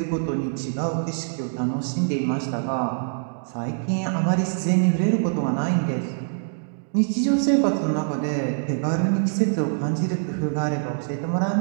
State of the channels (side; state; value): left; silent; digital silence